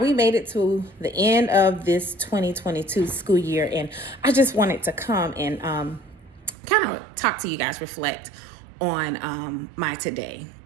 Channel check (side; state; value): left; drops out; at 6.6 s